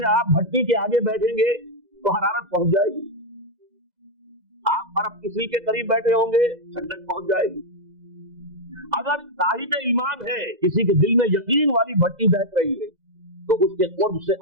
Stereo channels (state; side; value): late; left; 2.0 ms